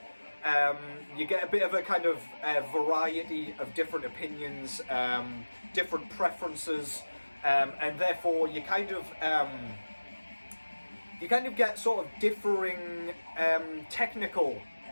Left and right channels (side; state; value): both; inverted; correlation -1.00